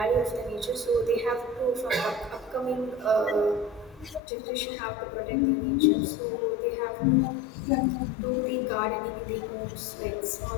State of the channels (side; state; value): right; drops out; at 4.2 s